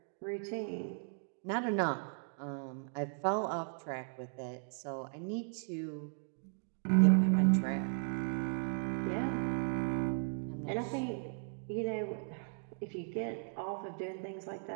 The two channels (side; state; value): left; silent; 53 dB below the other